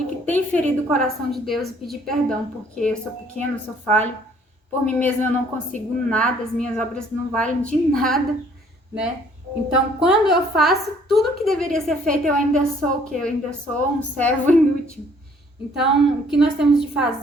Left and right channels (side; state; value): both; normal; correlation 0.60